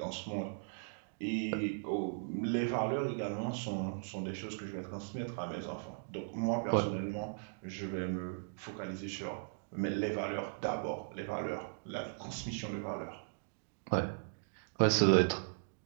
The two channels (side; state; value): left; silent; digital silence